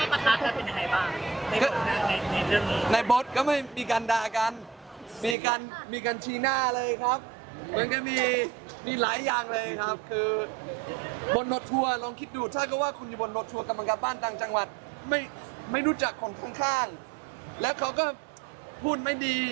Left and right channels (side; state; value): left; drops out; at 5.4 s